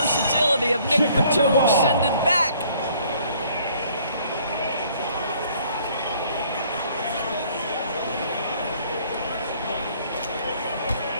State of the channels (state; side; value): inverted; both; correlation -0.60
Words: of Nick Batum send it back.